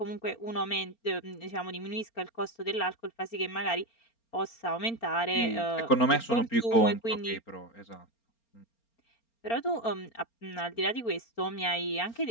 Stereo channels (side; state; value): right; late; 4.4 ms